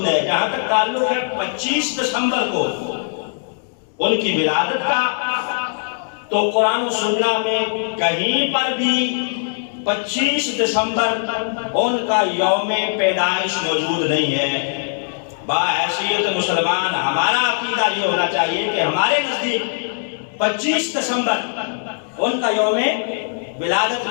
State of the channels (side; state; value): right; silent; digital silence